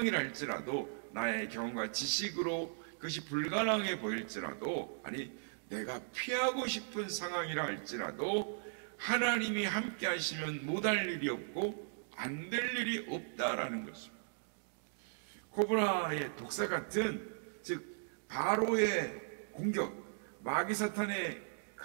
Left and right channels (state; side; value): silent; left; digital silence